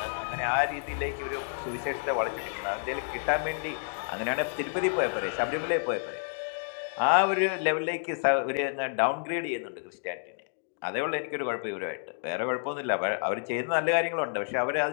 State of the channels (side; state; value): right; silent; digital silence